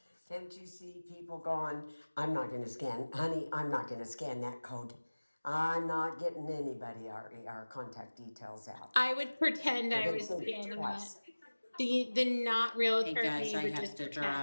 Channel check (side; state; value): both; inverted; correlation -1.00